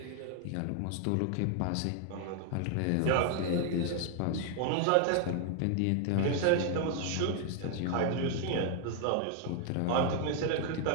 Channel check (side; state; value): both; different; correlation 0.00